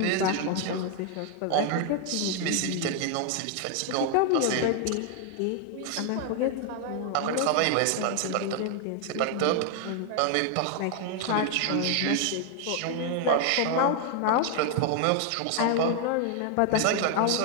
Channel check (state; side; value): different; both; correlation 0.00